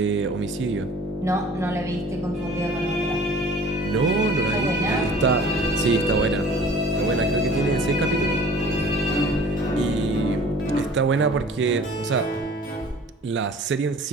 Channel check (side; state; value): both; normal; correlation 0.47